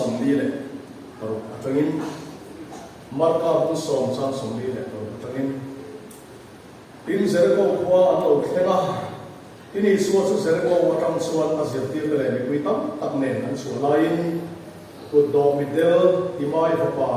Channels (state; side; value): identical; both; correlation 1.00